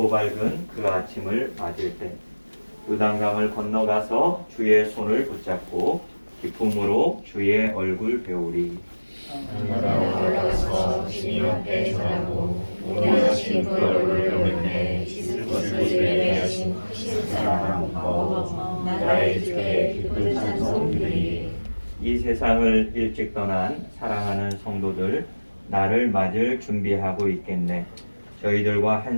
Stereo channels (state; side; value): inverted; both; correlation -1.00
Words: 밝은 그 아침을 맞을 때 요단강을 건너가서 주의 손을 붙잡고 기쁨으로 주의 얼굴 배우리. 하늘나라 올라가서 주님 앞에 전하고 원하신 그 얼굴을 배우는데 씻을 것을 예배하신 사랑 마음 나의 주께 기쁜 찬송 드리리. 이 세상을 일찍 떠난 사랑하는 성도들 나를 맞을 준비하고 있겠네. 저희들과